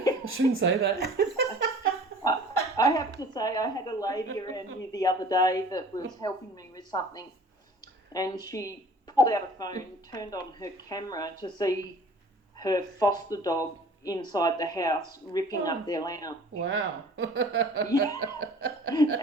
I shouldn't say that. I have to say, I had a lady around here the other day that was helping me with something, and she pulled out a phone, turned on her camera to see her foster dog inside the house ripping up their lounge. Wow. Yeah.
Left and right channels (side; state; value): both; normal; correlation 0.47